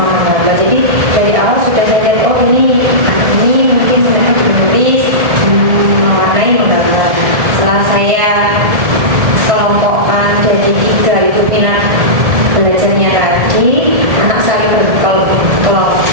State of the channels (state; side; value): late; left; 1.7 ms